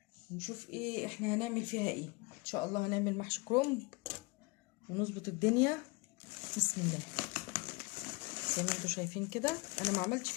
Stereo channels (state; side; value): quieter; right; 26.2 dB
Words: ونشوف ايه احنا هنعمل فيها ايه. ان شاء الله هنعمل محشي كرنب ونظبط الدنيا. بسم الله. زي ما انتم شايفين كده، انا ما عملتش